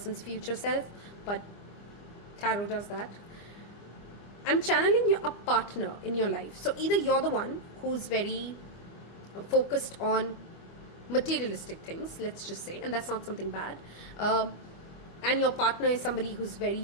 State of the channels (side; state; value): right; late; 25 ms